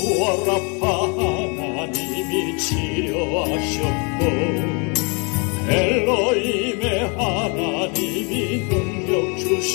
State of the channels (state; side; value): quieter; right; 33.0 dB